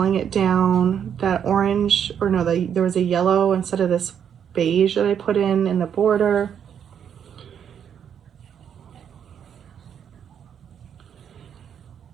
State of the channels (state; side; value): quieter; left; 8.4 dB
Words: it down. That orange, or no, there was a yellow instead of this beige that I put in the border.